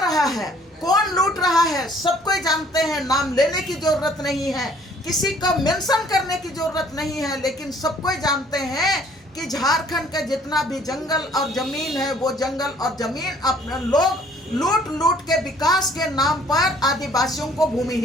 रहा है। कौन लूट रहा है सबको जानते हैं, नाम लेने की जरूरत नहीं है, किसी को मेंशन करने की जरूरत नहीं है, लेकिन सबको जानते हैं कि झारखंड का जितना भी जंगल और जमीन है, वो जंगल और जमीन अपने लोग लूट लूट के विकास के नाम पर आदिवासियों को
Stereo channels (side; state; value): both; normal; correlation 0.58